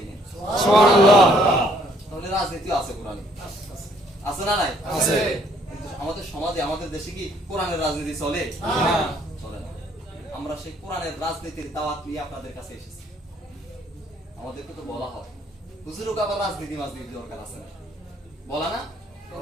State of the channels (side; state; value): both; normal; correlation 0.64